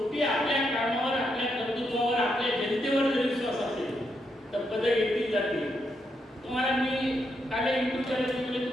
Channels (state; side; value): normal; both; correlation 0.80